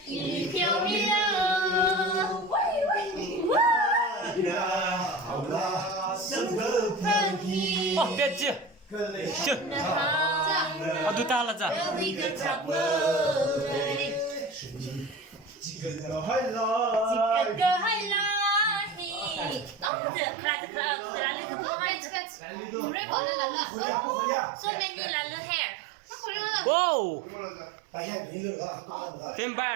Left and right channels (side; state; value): left; drops out; at 19.9 s